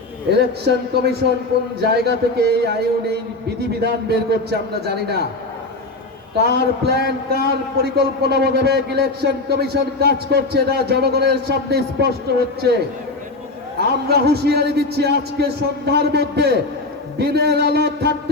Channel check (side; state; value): right; quieter; 3.0 dB